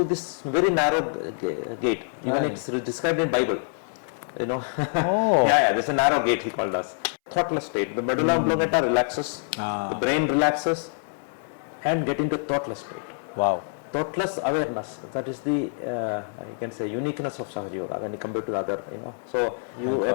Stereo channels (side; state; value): right; silent; 61 dB below the other